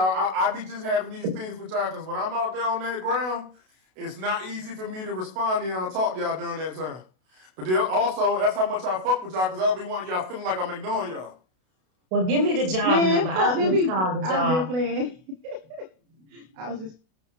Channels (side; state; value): left; late; 32 ms